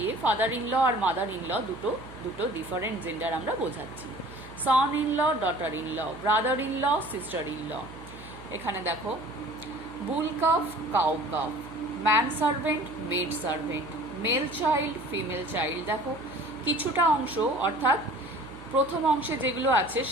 ফাদার ইন ল আর মাদার ইন ল দুটো ডিফারেন্ট জেন্ডার আমরা বোঝাচ্ছি। Son in law, daughter in law, brother in law, sister in law. এখানে দেখো bull calf, cow calf, man servant, maid servant, male child, female child. দেখো কিছুটা অংশ অর্থাৎ প্রথম অংশে যেগুলো আছে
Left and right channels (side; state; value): right; noise; hum, 17 dB below the sound